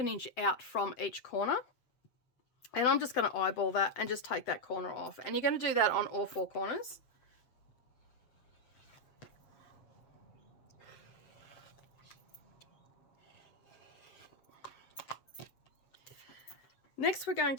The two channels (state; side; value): late; right; 7.9 ms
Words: inch out from each corner. And I'm just going to eyeball that and just take that corner off. And you're going to do that on all 4 corners. Next, we're going